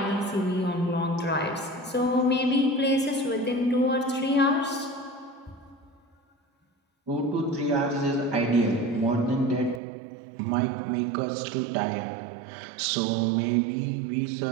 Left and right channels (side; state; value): left; drops out; at 9.8 s